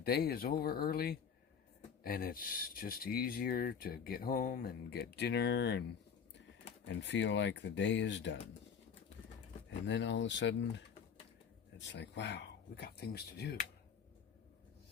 is over early, and it's just easier to get home and get dinner and feel like the day is done. And then all of a sudden, it's like, wow, we got things to do.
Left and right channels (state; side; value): quieter; right; 7.0 dB